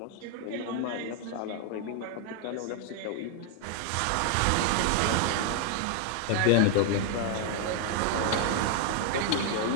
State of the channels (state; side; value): different; both; correlation 0.00